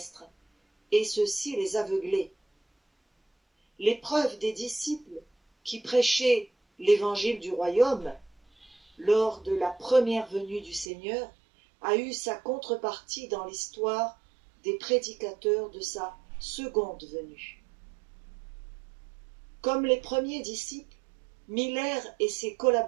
et ceci les aveuglait. L'épreuve des disciples qui prêchaient l'évangile du royaume lors de la première venue du Seigneur a eu sa contrepartie dans l'histoire des prédicateurs de sa seconde venue. Comme les premiers disciples, Miller et ses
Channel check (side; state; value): left; drops out; at 10.9 s